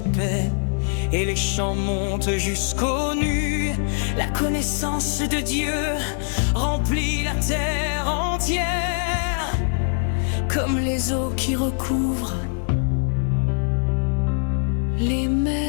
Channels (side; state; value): right; silent; digital silence